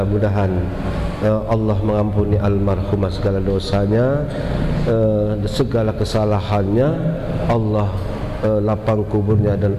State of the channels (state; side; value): identical; both; correlation 1.00